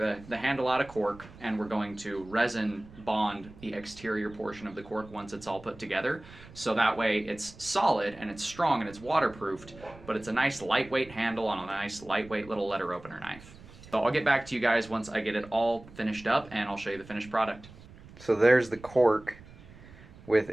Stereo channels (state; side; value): noise; right; rumble, 20 dB below the sound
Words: handle out of cork, and we're going to resin bond the exterior portion of the cork once it's all put together. So that way it's solid and it's strong and it's waterproofed, but it's a nice lightweight handle on a nice lightweight little letter opener knife. So I'll get back to you guys once I get it all finished up, and I'll show you the finished product. So there's the cork with